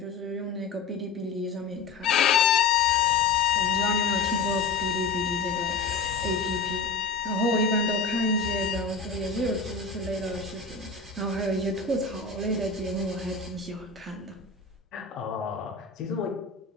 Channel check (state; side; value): quieter; right; 4.7 dB